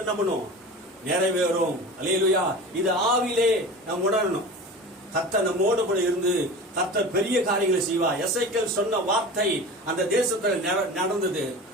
என்ன பண்ணும்? நிறைவேறும். அல்லேலூயா. இது ஆவிலே நாம் உணரணும். கர்த்தர் நம்மோடு கூட இருந்து கர்த்தர் பெரிய காரியங்களை செய்வார். எசேக்கியேல் சொன்ன வார்த்தை அந்த தேசத்துல நடந்தது.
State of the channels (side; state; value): both; normal; correlation 0.33